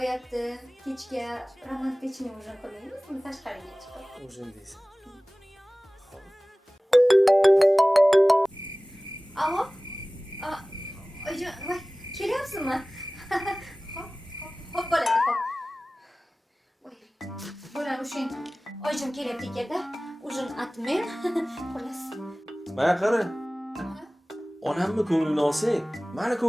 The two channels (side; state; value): both; normal; correlation 0.98